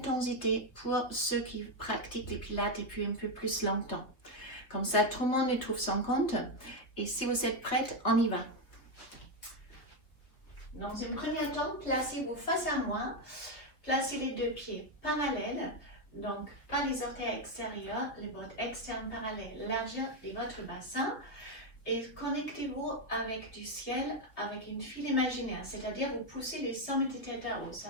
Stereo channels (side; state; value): right; late; 3.1 ms